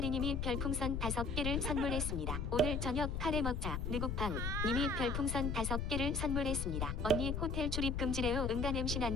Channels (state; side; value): noise; left; rumble, 2 dB below the sound